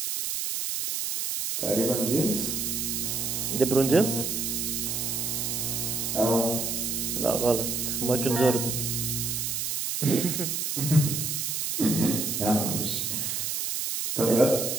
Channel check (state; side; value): noise; right; hiss, 1 dB below the sound